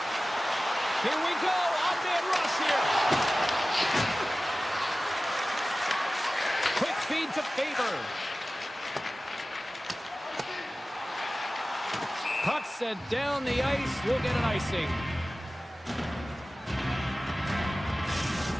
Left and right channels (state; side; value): normal; both; correlation 0.97